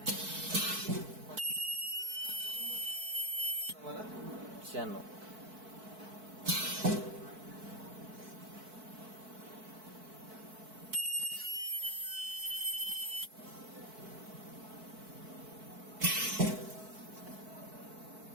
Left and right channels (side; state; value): left; late; 4.6 ms